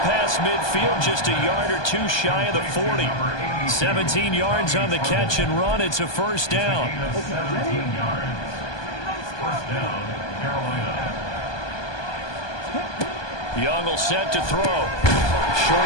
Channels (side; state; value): right; late; 1.2 ms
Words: past midfield, just a yard or two shy of the 40. 17 yards on the catch and run. It's a first down. Young will set to throw.